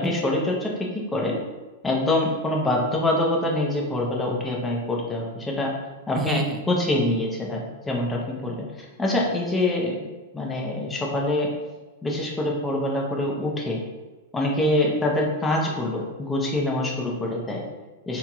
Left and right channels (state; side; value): normal; both; correlation 0.31